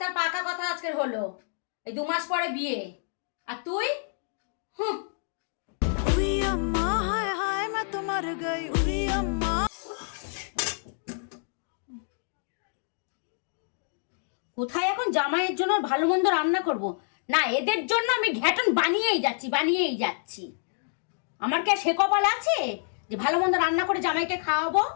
তার পাকা কথা আজকের হলো, এই 2 মাস পরে বিয়ে। আর তুই? হুঁ। উই আম্মা হায় হায় मैं तो मर गई উই আম্মা। কোথায় এখন জামাইয়ের জন্য ভালো মন্দ রান্না করব? না, এদের জন্য আমি ঘ্যাটন বানিয়েই যাচ্ছি। আমার কি আর সে কপাল আছে যে ভালো মন্দ রান্না করে জামাইকে খাওয়াবো?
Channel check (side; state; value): right; silent; digital silence